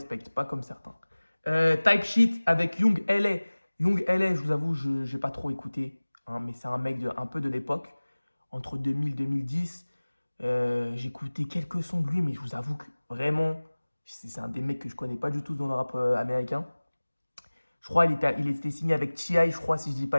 pas comme certains. Type Shit avec Young LA. Young LA, je vous avoue, je n'ai pas trop écouté. Hein, mais c'est un mec un peu de l'époque. Entre 2000 et 2010. J'ai écouté quelques sons de lui, mais je vous avoue que vraiment... C'est un des mecs que je connais pas du tout dans le rap américain. Je crois qu'il était signé avec T.I., je crois, si je dis pas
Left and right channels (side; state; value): both; inverted; correlation -1.00